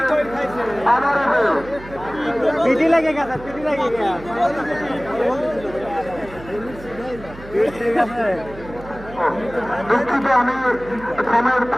পিটি লাগে গেছে পিটি লাগে গেছে দুঃখিত, আমি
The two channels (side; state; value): right; noise; hum, 17 dB below the sound